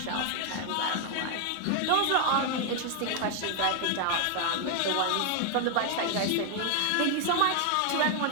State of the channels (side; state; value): both; different; correlation 0.00